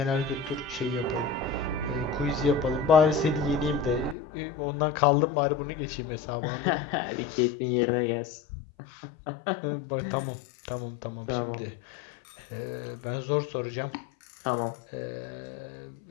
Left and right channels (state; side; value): drops out; right; at 4.2 s